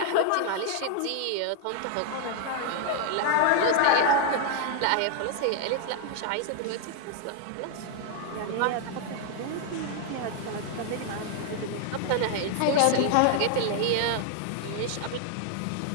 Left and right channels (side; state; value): both; different; correlation 0.00